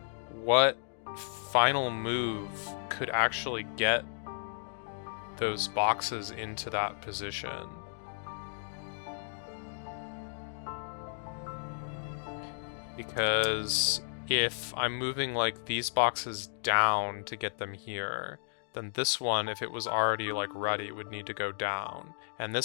what final move could actually get those boxes into that position. Because if I'm moving, like, these boxes down to get them here, then this one, if it was already, like, ready, would need to go down. And this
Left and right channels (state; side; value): silent; right; digital silence